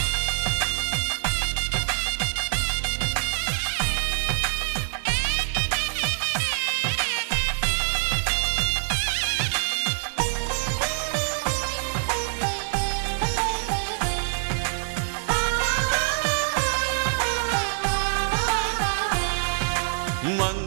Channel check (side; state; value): left; silent; 62 dB below the other